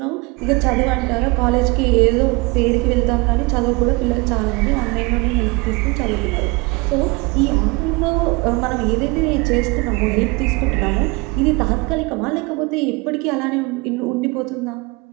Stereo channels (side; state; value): left; quieter; 26.4 dB